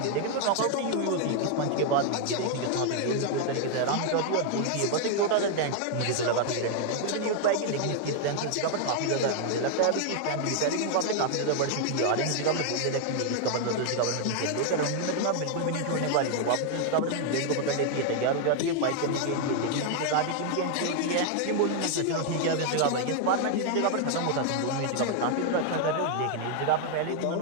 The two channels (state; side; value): different; both; correlation 0.00